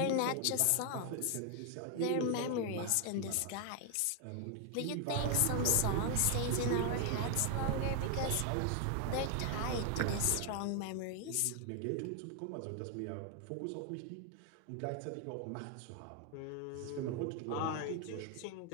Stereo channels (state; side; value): different; both; correlation 0.00